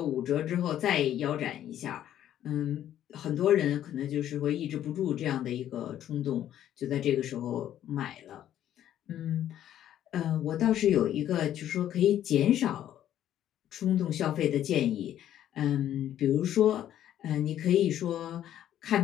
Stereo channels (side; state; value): right; quieter; 11.4 dB